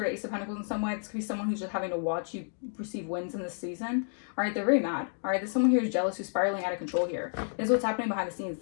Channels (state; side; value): silent; right; digital silence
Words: of Ace of Pentacles in some way. This could be someone who's just having to watch you receive wins in this season. All right, they're very mad. All right, there's someone here who's jealous, who's spiraling out of control here. This is what's happening behind the scenes.